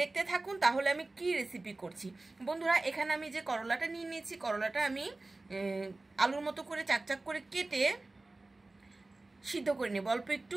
থাকুন তাহলে আমি কি রেসিপি করছি। বন্ধুরা, এখানে আমি যে করলাটা নিয়ে নিয়েছি, করলাটা আমি আলুর মতো করে চাকচাক করে কেটে সিদ্ধ করে নেব অল্প একটু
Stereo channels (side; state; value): left; quieter; 3.1 dB